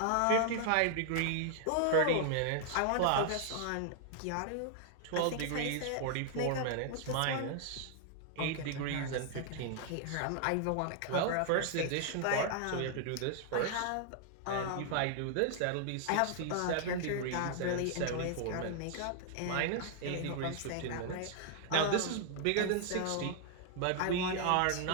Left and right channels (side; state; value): both; different; correlation 0.00